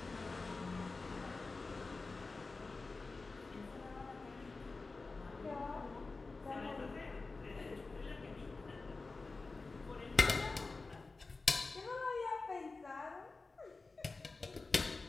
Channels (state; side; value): quieter; right; 3.8 dB